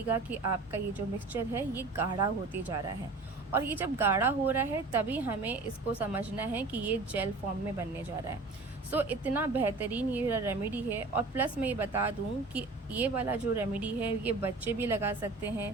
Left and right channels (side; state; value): left; quieter; 3.6 dB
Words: कि आपका ये जो मिक्सचर है ये गाढ़ा होते जा रहा है। और ये जब गाढ़ा हो रहा है तभी हमें इसको समझना है कि ये जेल फॉर्म में बनने जा रहा है। सो इतना बेहतरीन ये रेमेडी है। और प्लस मैं ये बता दूं कि ये वाला जो रेमेडी है ये बच्चे भी लगा सकते